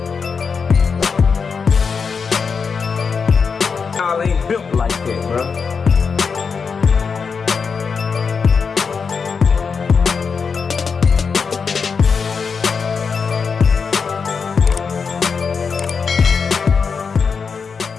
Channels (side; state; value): right; quieter; 5.6 dB